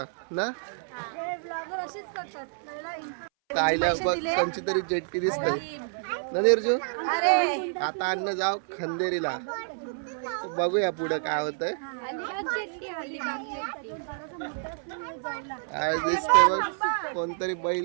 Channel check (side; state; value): left; silent; 59 dB below the other